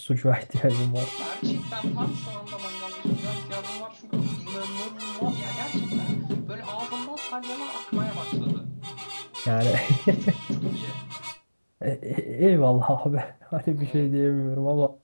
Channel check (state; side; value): inverted; both; correlation -1.00